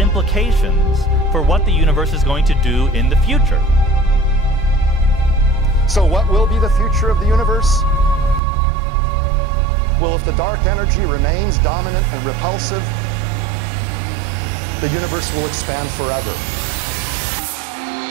for what the universe is going to do in the future. So what will be the future of the universe? Well, if the dark energy remains dominant and repulsive, the universe will expand forever.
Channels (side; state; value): left; drops out; at 8.4 s